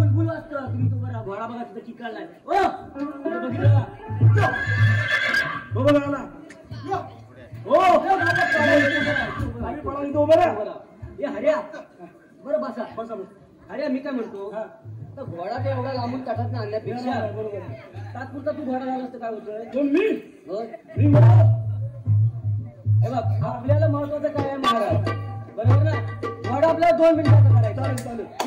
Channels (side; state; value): both; identical; correlation 1.00